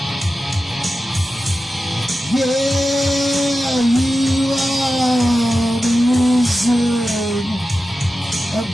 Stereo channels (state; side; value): normal; both; correlation 0.93